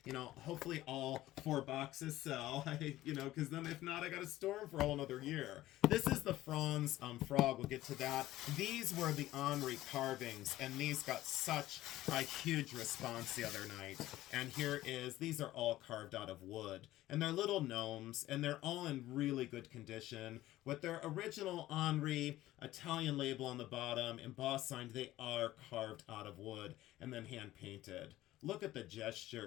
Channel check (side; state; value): right; quieter; 15.6 dB